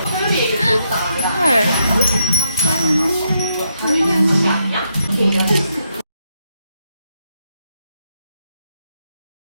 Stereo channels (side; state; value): both; inverted; correlation -0.78